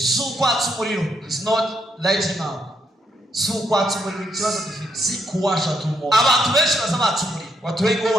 ukwatsa umuriro, is not lighting up. si ukwatsa umuriro. Ikibazo dufite Si kuwasha tu moto. abantu benshi bazabatsa umuriro, Watu wengi wao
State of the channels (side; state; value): both; normal; correlation 0.77